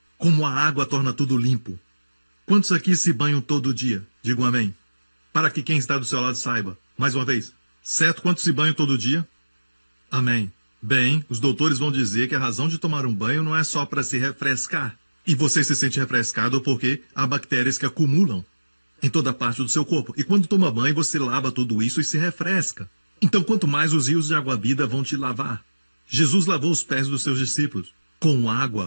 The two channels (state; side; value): inverted; both; correlation -1.00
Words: Como a água torna tudo limpo. Quantos aqui se banham todo dia? Digam amém. Para que quem está do seu lado saiba. Mais uma vez. Certo? Quantos se banham todo dia? Amém. Bem, os doutores vão dizer que a razão de tomar um banho não é só para se refrescar. E você se sente refrescado porque há bactérias que acumulam em toda parte do seu corpo. E quando toma banho, você lava tudo isso e se refresca. Então, quanto mais os rios de água-vida vão te lavar. Jesus lavou os pés dos seus discípulos com